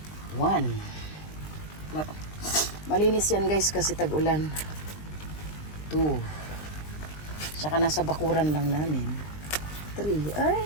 1. Malinis yan, guys, kasi tag-ulan. 2. Tsaka nasa bakuran lang namin. 3. Ay,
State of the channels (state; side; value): late; right; 20 ms